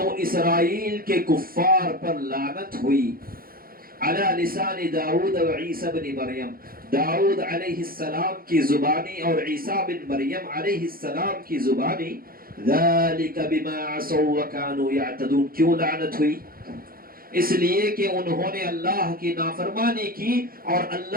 اسرائیل کے کفار پر لعنت ہوئی، علی لسان داؤد و عیسی بن مریم، داؤد علیہ السلام کی زبانی اور عیسیٰ بن مریم علیہ السلام کی زبانی۔ ذالک بما عصوا وکانوا یعتدون، کیوں لعنت ہوئی؟ اس لیے کہ انہوں نے اللہ کی نافرمانی کی اور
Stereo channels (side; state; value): left; late; 0.42 ms